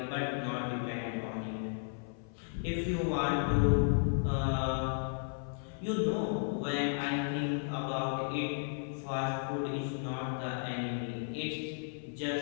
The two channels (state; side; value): silent; right; 55 dB below the other